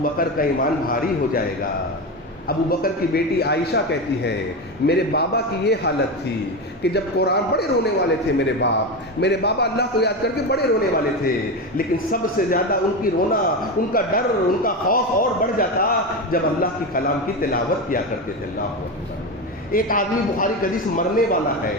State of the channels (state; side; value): normal; both; correlation 0.18